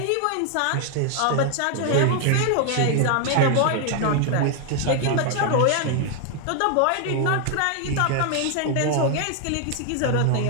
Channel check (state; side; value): different; both; correlation 0.00